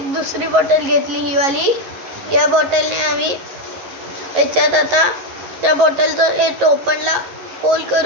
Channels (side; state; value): left; late; 11 ms